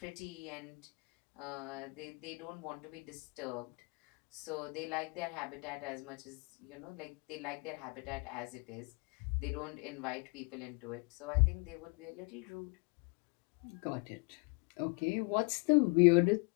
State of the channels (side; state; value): right; quieter; 32.5 dB